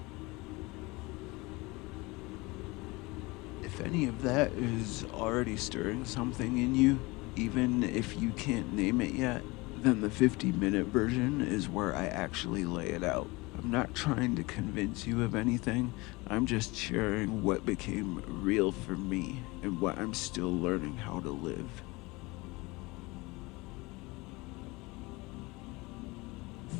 If any of that is already stirring something in you, even if you can't name it yet, then the 50-minute version is where I actually lay it out. I'm not trying to convince you of anything, I'm just sharing what became real for me and what I'm still learning how to live.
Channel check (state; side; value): quieter; right; 23.7 dB